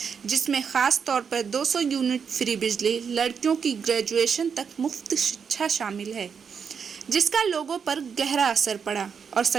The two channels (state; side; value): quieter; left; 6.6 dB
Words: जिसमें ख़ास तौर पर 200 यूनिट फ्री बिजली, लड़कियों की ग्रेजुएशन तक मुफ्त शिक्षा शामिल है, जिसका लोगों पर गहरा असर पड़ा। और